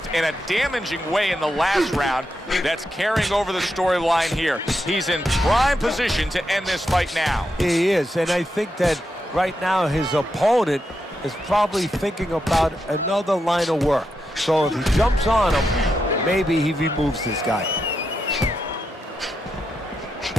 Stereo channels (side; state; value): both; normal; correlation 0.85